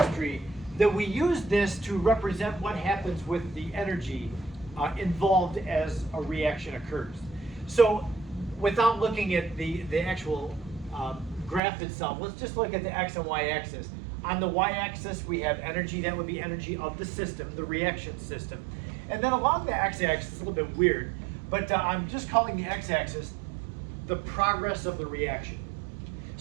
that we use this to represent what happens with the energy involved as a reaction occurs. So without looking at the actual graph itself, let's just look at the x and y axis. On the y-axis, we have energy. That would be energy of the system, the reaction system. And then along the x-axis, it's a little bit weird, but I'm just calling the x-axis the progress of the reaction.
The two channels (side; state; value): left; drops out; at 11.6 s